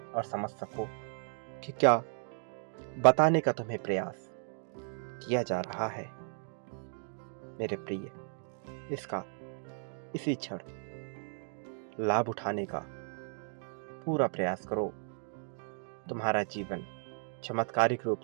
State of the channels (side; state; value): left; silent; 55 dB below the other